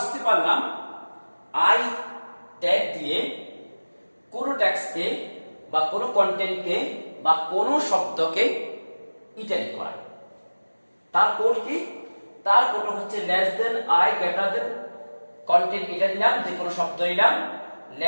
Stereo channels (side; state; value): both; inverted; correlation -1.00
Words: পারলাম আই ট্যাগ দিয়ে কোন টেক্সটকে বা কোন কন্টেন্টকে বা কোন শব্দকে ইটালিক করা। তার কোড কি? তার কোড হচ্ছে less than, I, greater than, content এটা দিলাম, যে কোনো শব্দ দিলাম,